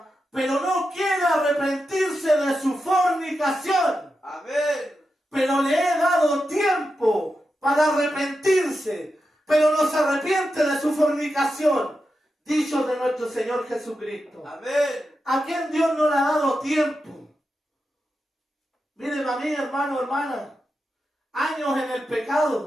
pero no quiere arrepentirse de su fornicación. Amén. Pero le he dado tiempo para arrepentirse, pero no se arrepiente de su fornicación. Dicho de nuestro Señor Jesucristo. Amén. ¿A quién Dios no le ha dado tiempo? Miren a mí, hermano, hermana, años en el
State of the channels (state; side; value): normal; both; correlation 0.89